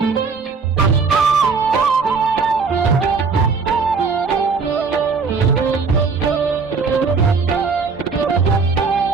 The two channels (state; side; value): quieter; left; 4.9 dB